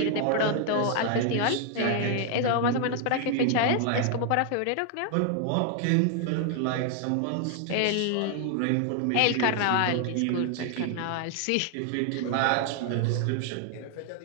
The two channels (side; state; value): both; different; correlation 0.00